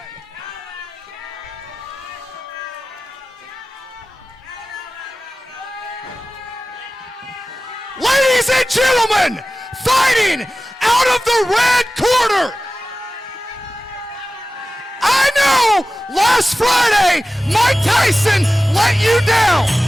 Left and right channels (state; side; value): normal; both; correlation 0.95